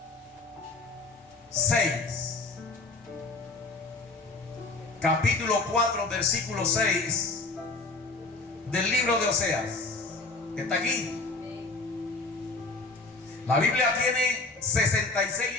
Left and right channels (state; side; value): quieter; right; 3.4 dB